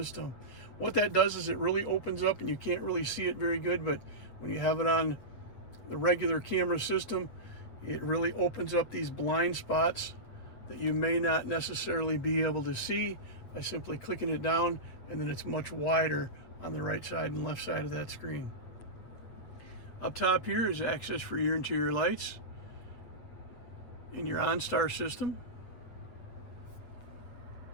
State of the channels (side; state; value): right; late; 8.4 ms